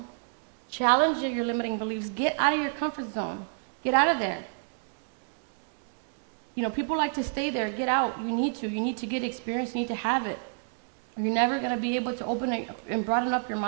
Challenge your limiting beliefs. Get out of your comfort zone. Get out of there. You know, people like to stay there. Get out. You need to. You need to get experience. You need to have it. You're never going to be able to open it and broaden up your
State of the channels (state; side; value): silent; left; digital silence